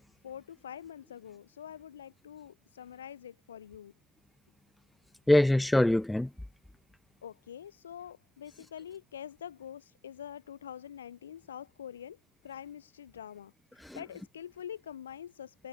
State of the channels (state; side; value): normal; both; correlation 0.91